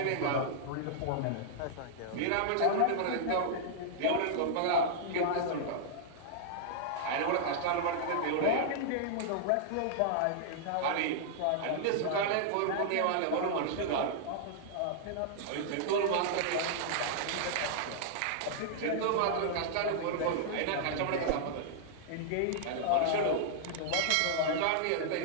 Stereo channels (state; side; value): different; both; correlation -0.01